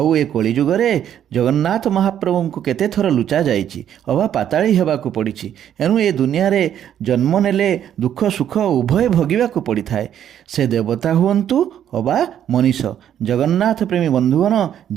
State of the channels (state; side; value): quieter; left; 10.1 dB